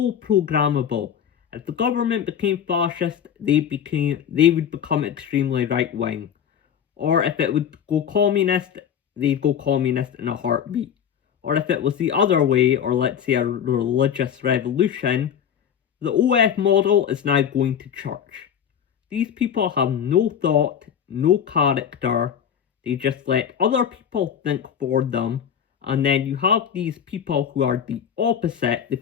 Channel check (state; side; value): quieter; right; 8.5 dB